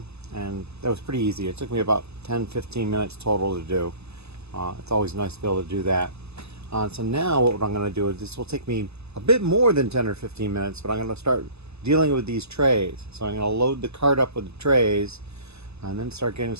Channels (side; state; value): left; late; 0.79 ms